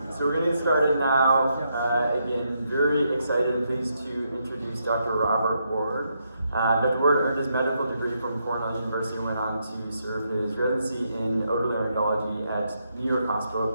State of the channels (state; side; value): inverted; both; correlation -0.79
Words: So we're going to get started now. Again, very excited and pleased to introduce Dr. Robert Ward. Dr. Ward earned his medical degree from Cornell University and went on to serve his residency in otolaryngology at New York